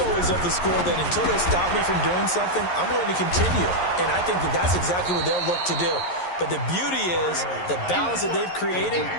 always of the school that until they stop me from doing something, I'm going to continue. And I think that that's exactly what they'll look to do. But the beauty is the balance that they've created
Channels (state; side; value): late; right; 11 ms